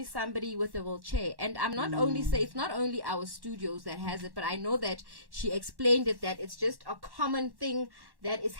somebody with a wheelchair. And I'm not only say it's not only our studios that has it, but I know that she explained it that it's just a common thing that is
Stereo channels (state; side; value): late; left; 1.1 ms